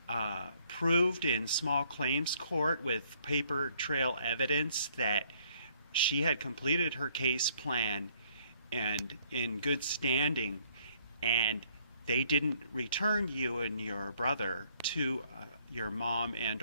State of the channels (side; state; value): both; inverted; correlation -0.65